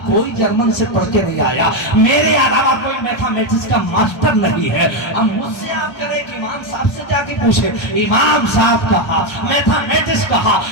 کوئی جرمن سے پڑھ کے نہیں آیا، میرے علاوہ کوئی میتھمیٹکس کا ماسٹر نہیں ہے. اب مجھ سے آپ کریں کہ امام صاحب سے جا کے پوچھے. امام صاحب کہا میتھمیٹکس کہا،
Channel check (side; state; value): right; late; 1.3 ms